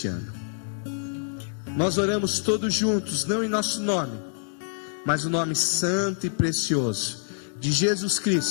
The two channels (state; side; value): silent; right; digital silence